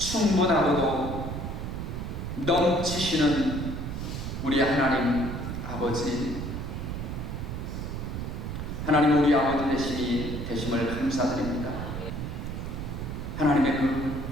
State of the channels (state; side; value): noise; right; rumble, 5 dB below the sound